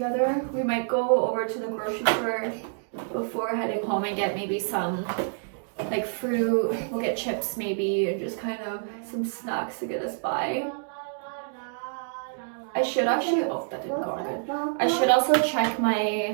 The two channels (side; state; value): left; silent; digital silence